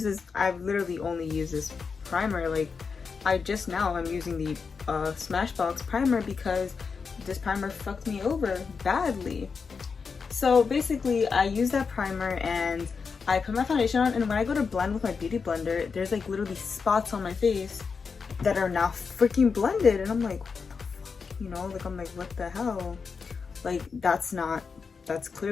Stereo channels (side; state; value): right; quieter; 5.3 dB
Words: literally only used this primer. Like, I'm using the Smashbox Primer because this primer fucked me over badly. So basically, I use that primer and I put my foundation on, and when I go to blend with my beauty blender, there's like literally spots on my face that are now freaking blended, and I'm like, what the fuck? You know, like I'm like, what the hell? Like that's